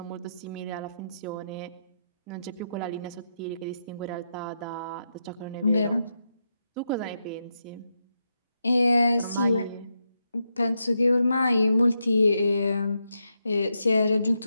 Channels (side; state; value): both; inverted; correlation -0.84